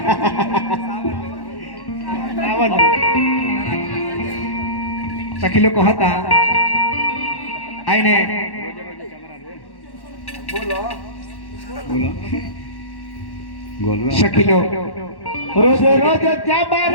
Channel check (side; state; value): right; late; 1.1 ms